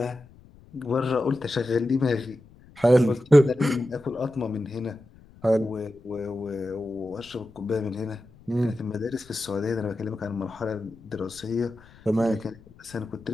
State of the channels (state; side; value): noise; left; rumble, 24 dB below the sound